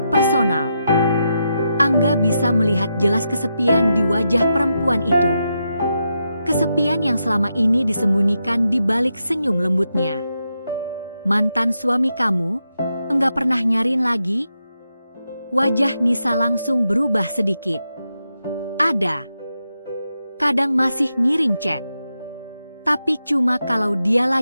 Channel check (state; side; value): inverted; both; correlation -0.85